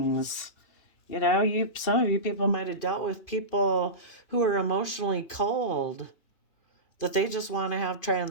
You know, some of you people might have dealt with people who are emotionally cold, that they just want to have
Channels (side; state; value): right; late; 2.4 ms